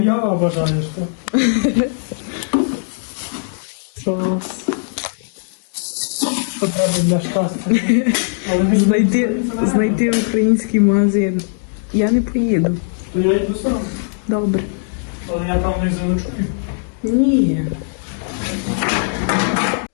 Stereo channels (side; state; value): right; silent; digital silence